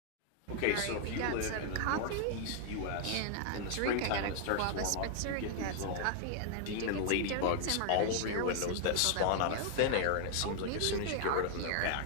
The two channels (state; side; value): different; both; correlation 0.00